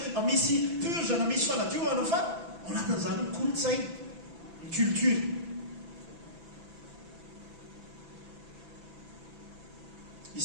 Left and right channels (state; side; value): late; left; 6.0 ms